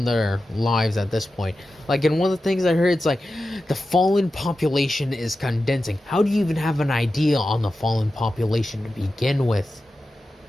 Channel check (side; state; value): both; normal; correlation 0.92